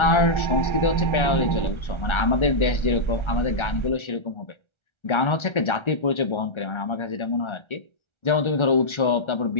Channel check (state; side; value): late; right; 1.3 ms